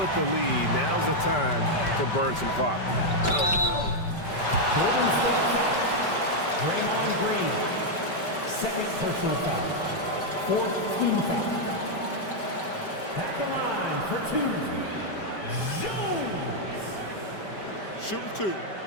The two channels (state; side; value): late; right; 5.1 ms